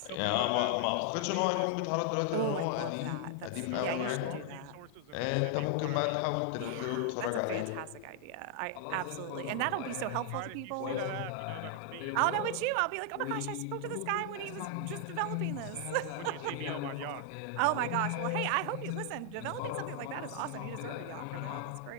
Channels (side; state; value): both; different; correlation 0.00